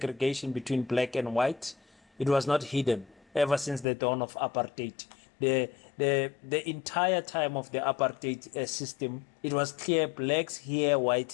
between black and white. It was not hidden ever since the dawn of apartheid. The entire time of the apartheid system, it was clear: blacks here,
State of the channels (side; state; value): right; drops out; at 3.9 s